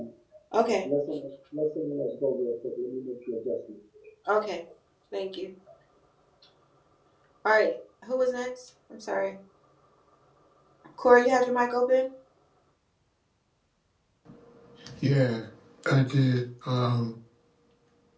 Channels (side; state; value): both; identical; correlation 1.00